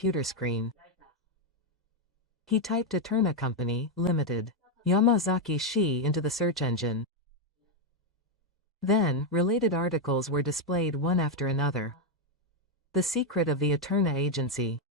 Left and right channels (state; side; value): normal; both; correlation 0.03